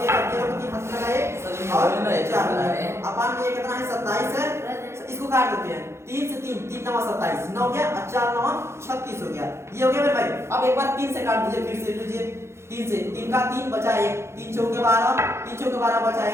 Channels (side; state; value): left; late; 0.13 ms